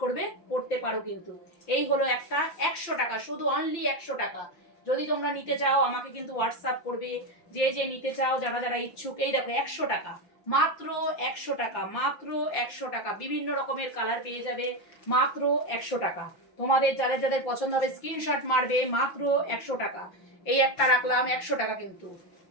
করবে, করতে পারো। কিন্তু এই হলো একটা 100 টাকা, শুধু অনলি 100 টাকা। যদি তোমরা নিতে চাও আমাকে কিন্তু হোয়াটসঅ্যাপ করবে, যে যে নিতে চাও, যারা যারা ইচ্ছুক। এই দেখো 100 টাকা, মাত্র 100 টাকা, মাত্র 100 টাকা। বিভিন্ন রকমের কালার পেয়ে যাবে, মাত্র 100 টাকা। তোমাদের যাদের যাদের পছন্দ হবে স্ক্রিনশট মারবে, মাত্র 100 টাকা। এই একটা রাখলাম 100 টাকা, কিন্তু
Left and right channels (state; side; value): late; right; 5.8 ms